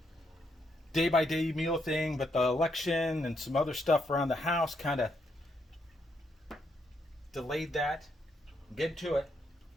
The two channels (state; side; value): normal; both; correlation 0.77